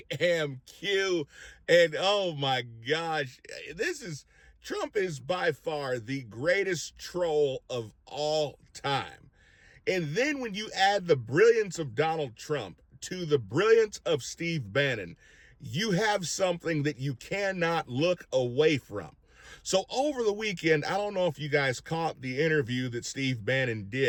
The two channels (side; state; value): both; identical; correlation 1.00